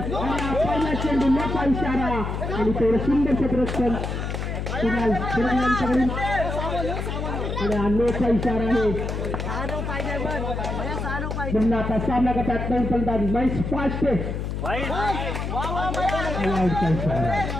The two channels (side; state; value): left; noise; hum, 3 dB below the sound